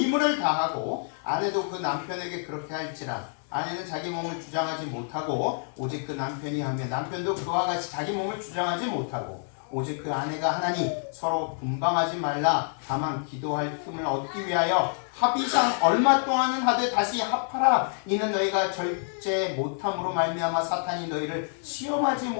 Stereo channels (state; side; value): silent; right; digital silence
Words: 다하고 아내도 그 남편에게 그렇게 할지라. 아내는 자기 몸을 주장하지 못하고 오직 그 남편이 하며 남편도 그와 같이 자기 몸을 주장하지 못하고 오직 그 아내가 하나니 서로 분방하지 말라. 다만 기도할 틈을 얻기 위하여 합의상 얼마 동안은 하되 다시 합하라. 이는 너희가 절제 못함으로 말미암아 사탄이 너희를 시험하지